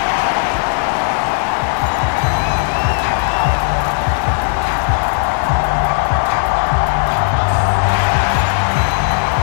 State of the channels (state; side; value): silent; right; 69 dB below the other